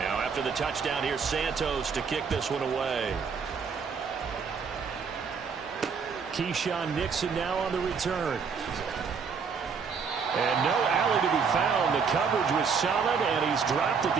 The touchdown here, Santos to kick this one away. Keyshawn Nixon now on the return. And no alley to be found. The coverage was solid, and he's dropped at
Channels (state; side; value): quieter; left; 5.8 dB